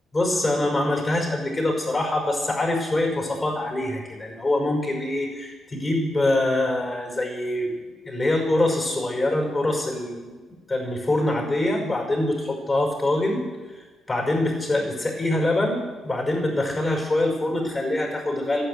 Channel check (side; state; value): both; normal; correlation 0.89